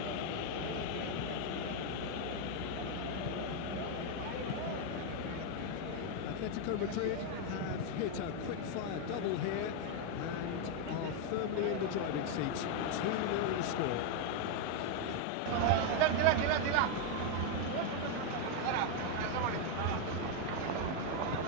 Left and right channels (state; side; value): different; both; correlation 0.01